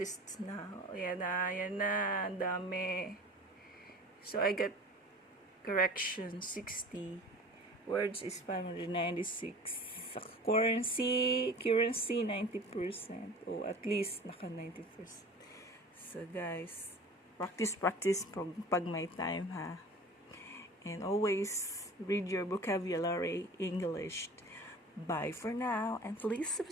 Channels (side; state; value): both; normal; correlation 0.40